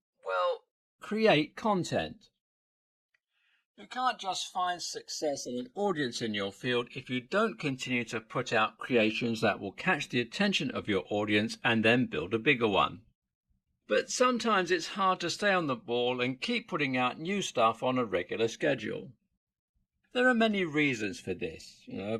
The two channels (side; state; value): both; identical; correlation 1.00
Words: create content. You can't just find success and an audience in your field if you don't continue to put out creations that will catch the attention of your audience and then build a bigger one. But sometimes it's hard to stay on the ball and keep putting out new stuff on a regular schedule. There are many reasons for this.